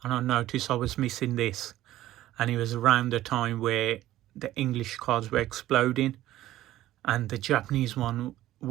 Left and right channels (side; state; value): left; quieter; 14.6 dB